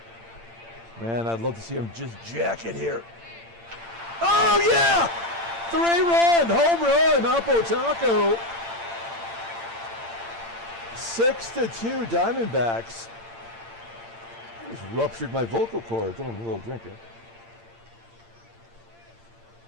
Man, I'd love to see him just jack it here. Oh, yeah! 3-run, home run, Oppo Taco. 6-2 Diamondbacks. I just ruptured my vocal cords. I'm a little drinker.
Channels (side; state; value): left; late; 8.8 ms